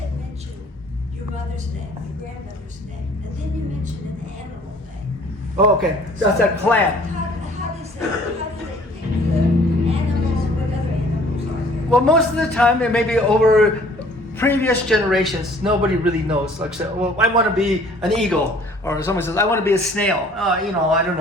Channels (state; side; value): normal; both; correlation 0.55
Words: mentioned your mother's name, your grandmother's name, and then you mentioned an animal name. Oh, okay, that's a clan. How does they pick the animals? What other animals are there? Well, most of the time, it may be over previous generations, nobody really knows. Like, say, well, I want to be an eagle, or someone says, I want to be a snail. I don't